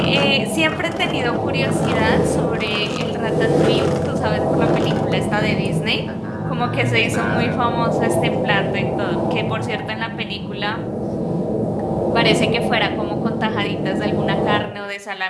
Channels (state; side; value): identical; both; correlation 1.00